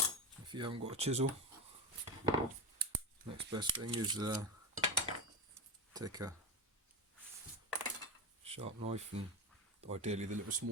If you haven't got a chisel, next best thing is take a sharp knife, and ideally the little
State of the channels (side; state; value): both; normal; correlation 0.20